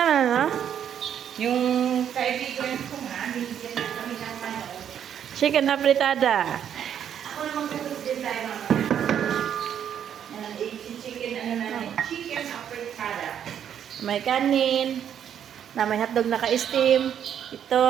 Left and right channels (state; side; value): quieter; left; 9.1 dB